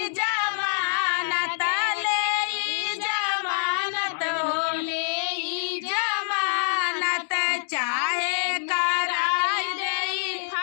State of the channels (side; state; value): right; silent; digital silence